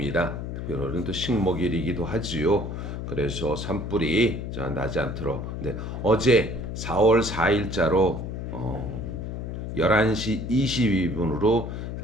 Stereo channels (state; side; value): noise; left; hum, 6 dB below the sound